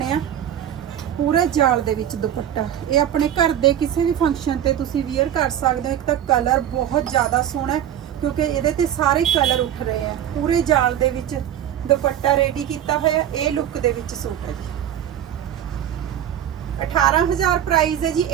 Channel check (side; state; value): left; quieter; 10.5 dB